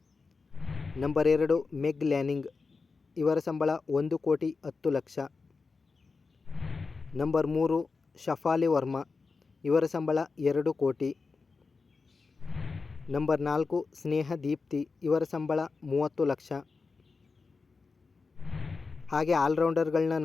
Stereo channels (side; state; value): right; quieter; 4.4 dB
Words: ನಂಬರ್ 2 ಮೆಗ್ ಲ್ಯಾನಿಂಗ್, ಇವರ ಸಂಬಳ 1,10,00,000. ನಂಬರ್ 3 ಶಫಾಲಿ ವರ್ಮಾ, ಇವರ ಸಂಬಳ 2 ಕೋಟಿ. ನಂಬರ್ 4 ಸ್ನೇಹ ದೀಪ್ತಿ, ಇವರ ಸಂಬಳ 30 ಲಕ್ಷ. ಹಾಗೆ ಆಲ್ರೌಂಡರ್ಗಳನ್ನ